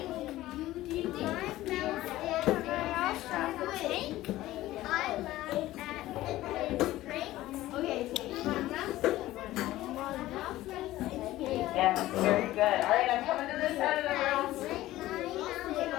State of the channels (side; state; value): right; quieter; 15.9 dB